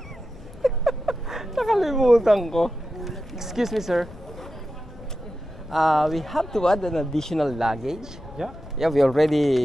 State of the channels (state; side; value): noise; left; rumble, 19 dB below the sound